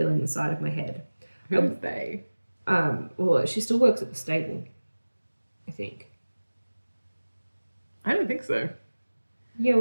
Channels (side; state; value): both; inverted; correlation -1.00